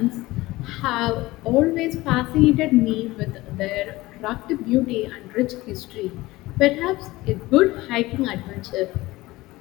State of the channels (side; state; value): right; quieter; 19.3 dB